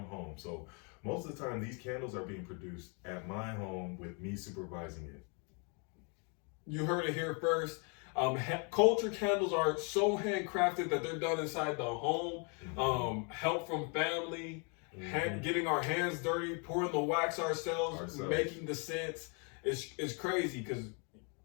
home. So most of the time, these candles are being produced at my home with me supervising it. You heard it here first. Culture Candles are so handcrafted that they're done inside the home. Help from family, getting our hands dirty, pouring the wax ourselves. Making the scents. It's crazy, because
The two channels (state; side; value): quieter; right; 36.1 dB